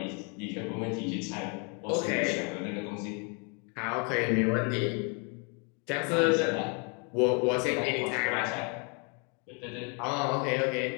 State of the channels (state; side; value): quieter; right; 35.0 dB